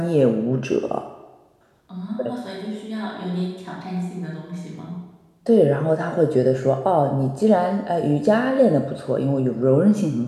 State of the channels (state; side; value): identical; both; correlation 1.00